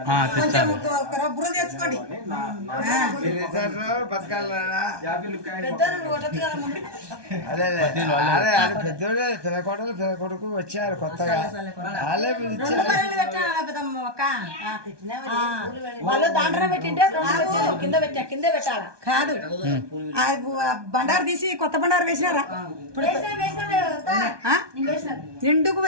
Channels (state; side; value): late; left; 1.2 ms